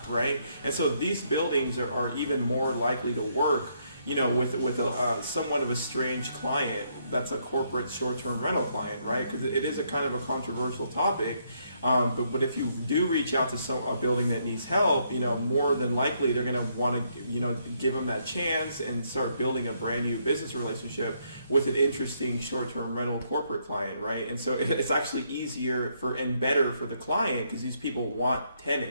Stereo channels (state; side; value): inverted; both; correlation -0.73